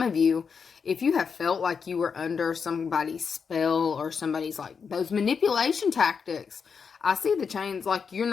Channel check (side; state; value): right; quieter; 6.0 dB